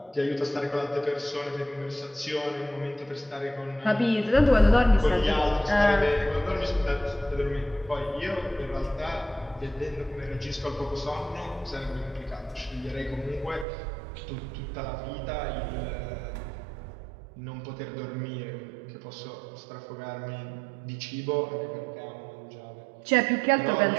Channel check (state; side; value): drops out; left; at 13.7 s